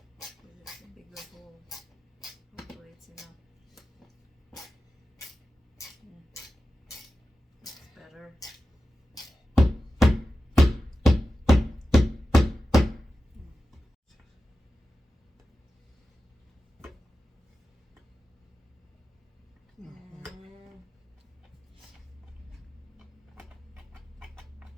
With just a bigger hole. Hopefully it's enough. Looks better.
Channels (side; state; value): both; normal; correlation 0.94